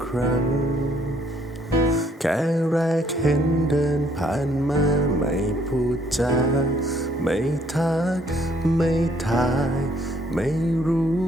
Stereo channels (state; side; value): normal; both; correlation 0.66